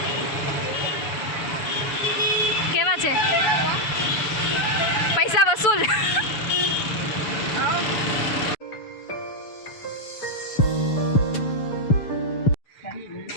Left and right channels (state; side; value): late; right; 6.9 ms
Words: કેવા છે? પૈસા વસૂલ.